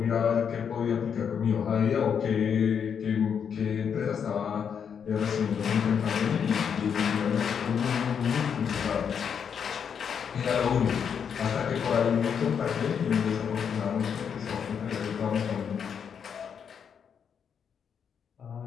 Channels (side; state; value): right; quieter; 7.3 dB